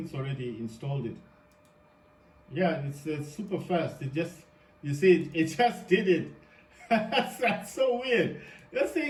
it's already installed it. Yeah, it's super fast. It just, you see, it just did it. That's so weird. This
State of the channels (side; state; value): both; identical; correlation 1.00